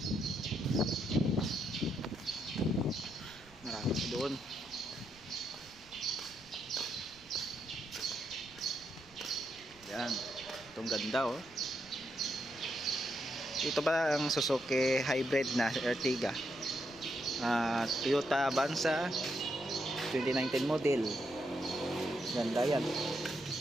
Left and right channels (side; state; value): right; noise; rumble, 24 dB below the sound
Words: Marami doon. Yan, itong ganda oh. Ito ba ang Suzuki hybrid na Ertiga, Toyota Avanza 2019 model. Ganda yan.